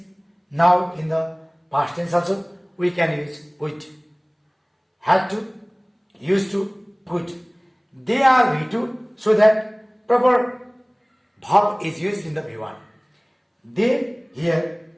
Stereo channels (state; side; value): identical; both; correlation 1.00